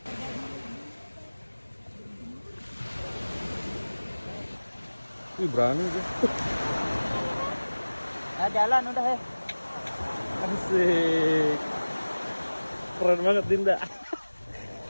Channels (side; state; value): both; inverted; correlation -1.00